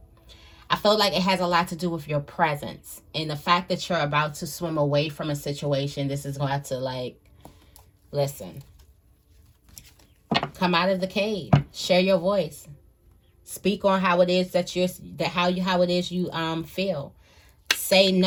I feel like it has a lot to do with your presence. And the fact that you're about to swim away from a situation, this is going to have to, like, listen. Come out of the cave. Share your voice. Speak on how it is that how it is you feel. Say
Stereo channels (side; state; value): both; identical; correlation 1.00